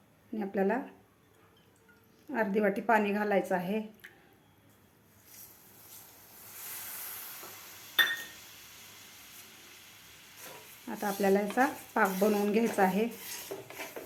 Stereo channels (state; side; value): identical; both; correlation 1.00